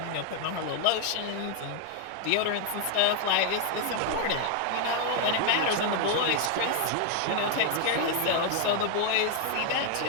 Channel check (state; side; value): different; both; correlation 0.00